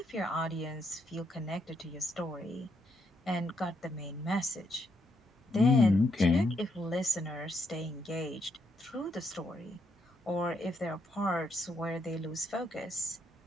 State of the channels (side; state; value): both; normal; correlation 0.76